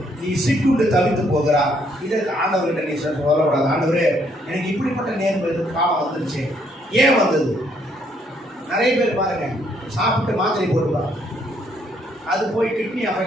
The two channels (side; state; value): both; normal; correlation 0.69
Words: நீ சிக்குண்டு தவித்து போகிறார். இதற்கு ஆண்டவர்கிட்ட நீ சொல்லக்கூடாது, ஆண்டவரே எனக்கு இப்படிப்பட்ட நேர்வு காலம் வந்துருச்சு. ஏன் வந்தது? நிறைய பேர் பாருங்க, சாப்பிட்டு மாத்திரை போட்டுப்பாங்க, அது போய் கிட்னி